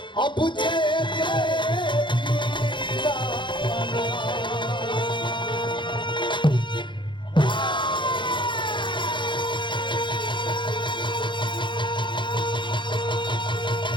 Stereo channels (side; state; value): right; late; 0.23 ms